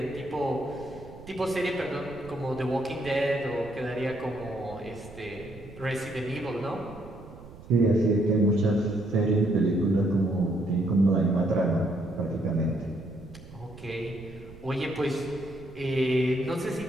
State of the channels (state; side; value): noise; right; rumble, 18 dB below the sound